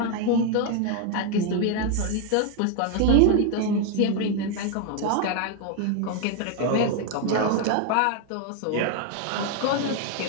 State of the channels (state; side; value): different; both; correlation 0.01